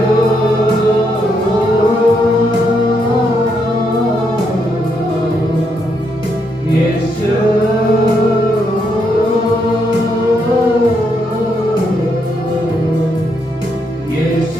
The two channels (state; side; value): normal; both; correlation 0.77